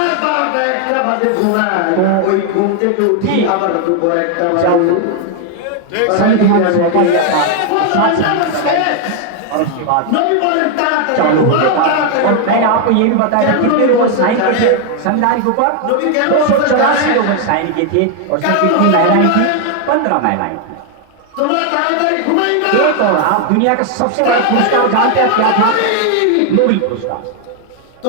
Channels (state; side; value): different; both; correlation 0.00